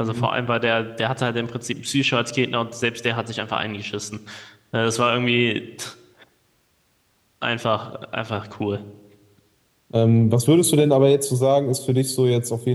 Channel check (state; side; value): identical; both; correlation 1.00